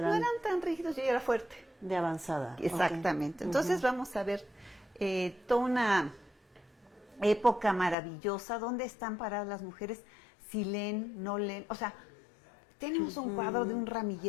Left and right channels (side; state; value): right; drops out; at 8.0 s